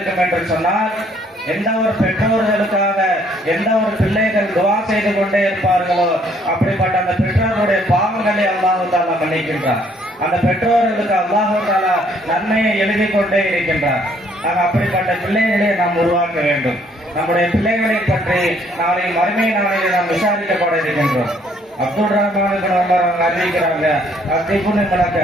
என்று சொன்னால் எந்த ஒரு பெற்றோர்களுக்காக எந்த ஒரு பிள்ளைகள் துவா செய்து கொண்டே இருப்பார்களோ அப்படிப்பட்ட அந்த பெற்றோருடைய பாவங்களை அல்லாஹ் தஆலா மன்னிக்கின்றார். அந்த பெற்றோர்களுக்கு அல்லாஹ் தஆலா நன்மையை எழுதி கொண்டே இருக்கின்றார். அப்படிப்பட்ட பிள்ளைகளை நாம் உருவாக்க வேண்டும். நம்முடைய பிள்ளைகளை பற்றி நாளை மறுமை நாளையில் நாம் விசாரிக்கப்பட இருக்கின்றோம். அப்துல் ரஹ்மான் அறிவிக்கிறாங்க, நடக்க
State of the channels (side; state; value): both; normal; correlation 0.64